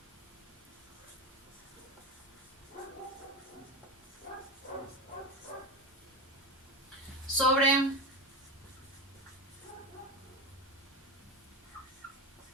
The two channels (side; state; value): both; normal; correlation 0.21